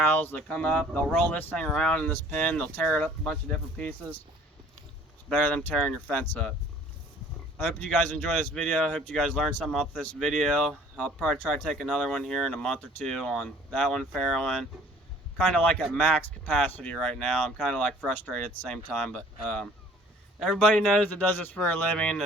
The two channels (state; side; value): normal; both; correlation 0.53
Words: They come up, they'll roll this thing around in this pen, they'll tear it up a bunch of different pieces. It's better than tearing your fence up. I hope you guys enjoy this video. I hope you guys learned something off this video. I'll probably try to take another one here in a month or 2 on that one farrowing. Kind of like at max capacity right now. I'm kind of like frustrated at the same time, but everybody knows that does this for a living.